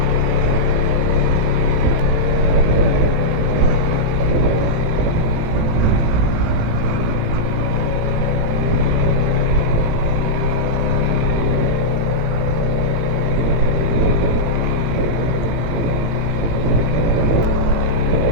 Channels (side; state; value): left; late; 18 ms